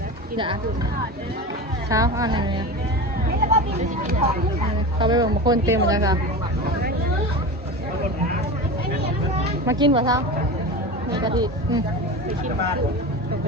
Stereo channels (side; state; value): both; normal; correlation 0.28